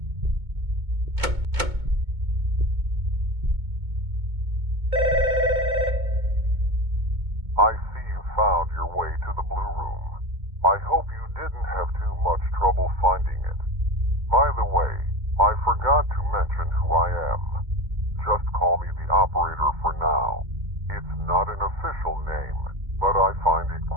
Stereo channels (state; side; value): late; left; 2.2 ms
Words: I see you found your way to the Blue Room. I hope you didn't have too much trouble finding it. By the way, I forgot to mention who I am. Just call me the operator for now. It's not an official name, but I find it